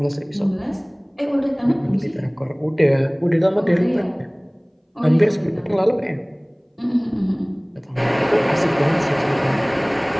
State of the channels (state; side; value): identical; both; correlation 1.00